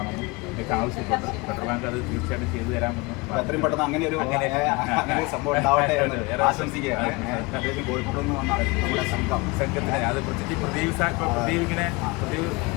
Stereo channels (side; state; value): right; quieter; 25.3 dB